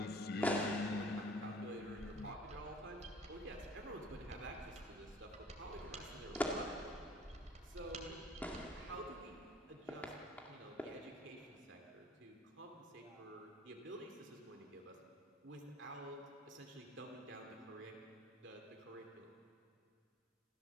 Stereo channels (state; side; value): normal; both; correlation 0.52